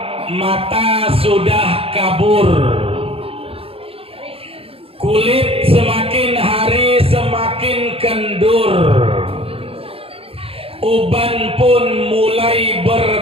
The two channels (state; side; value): late; left; 0.27 ms